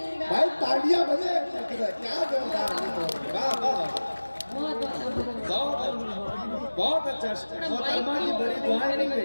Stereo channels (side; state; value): both; inverted; correlation -1.00